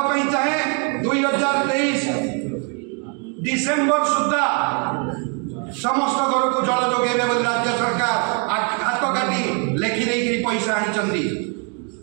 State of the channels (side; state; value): left; quieter; 38.4 dB